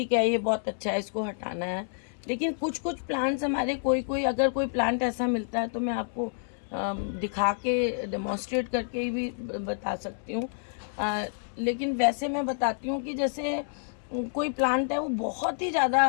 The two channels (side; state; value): right; silent; 59 dB below the other